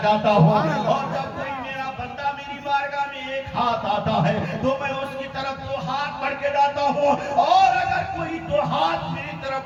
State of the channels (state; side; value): identical; both; correlation 1.00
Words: جاتا ہوں. اور جب کوئی میرا بندہ میری بارگاہ میں ایک ہاتھ آتا ہے تو میں اس کی طرف دو ہاتھ بڑھ کے جاتا ہوں. اور اگر کوئی دو ہاتھ میری طرف